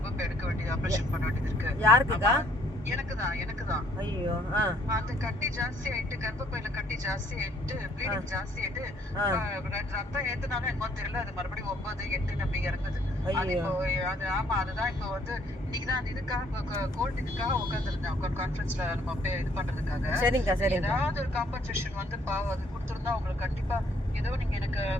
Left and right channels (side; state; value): both; normal; correlation 0.64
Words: எடுக்க வேண்டியது ஆபரேஷன் பண்ண வேண்டியது இருக்கு. யாருக்குக்கா? எனக்குதான். ஐயோ. அந்த கட்டி ஜாஸ்தி ஆயிட்டு, கர்ப்பப்பையில கட்டி ஜாஸ்தி ஆயிட்டு, ப்ளீடிங் ஜாஸ்தி ஆயிட்டு, ரத்தம் ஏத்துனாலும் என்னமோ தெரியல, அது மறுபடியும் 9, 8 நம்பி இறங்குது. அது இப்போ அதுதான் இப்போ வந்து இன்னைக்குதான் அந்த இதுக்காக கோல்ட் இதுக்காக உட்காந்துருந்தேன் கான்ஃபரன்ஸ்ல நம்ம இது பண்றதுக்காக. ஏதாவது ஒரு காம்பன்சேஷன் வந்து பாவம் அது கொடுத்துருந்தா உங்களுக்கு கண்டிப்பா ஏதோ நீங்க எனக்கு